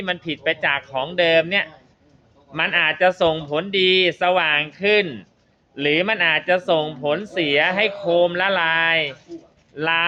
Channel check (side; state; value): both; identical; correlation 1.00